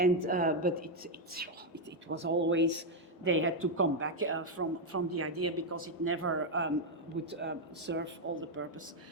but it was always, they had to come back from the idea because it never would serve all the purpose.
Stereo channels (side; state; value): both; normal; correlation 0.02